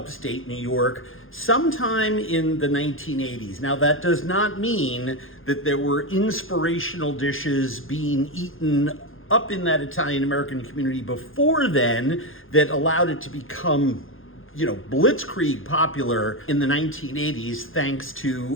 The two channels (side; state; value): right; late; 0.59 ms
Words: New York sometime in the 1980s. Now that does not mean that there were inspirational dishes being eaten up in that Italian-American community before then that allowed it to become blitzkrieg popular in the 1980s thanks